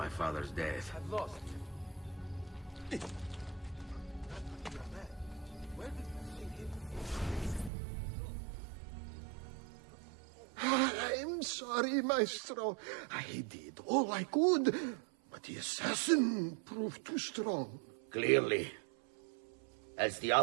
father's death? I've lost. Where did you see him? I'm sorry, Maestro. I did all I could, but the assassin proved too strong. Clearly. Else the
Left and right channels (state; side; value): drops out; left; at 7.7 s